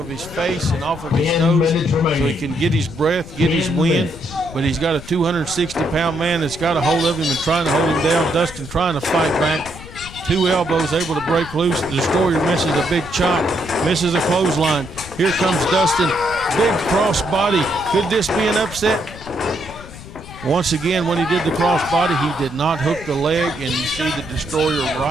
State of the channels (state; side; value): noise; left; rumble, 15 dB below the sound